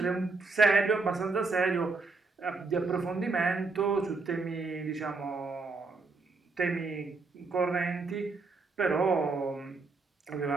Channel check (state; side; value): quieter; left; 4.0 dB